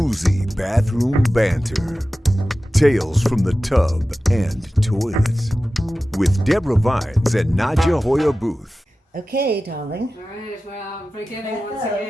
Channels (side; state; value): both; normal; correlation 0.95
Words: bathroom banter. Tales from the tub and toilet. With Deborah Vines and Nadja Hoyer Booth. Okay, darling. All right, well, beginning once